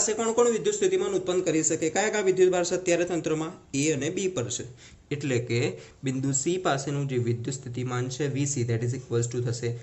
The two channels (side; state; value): both; identical; correlation 1.00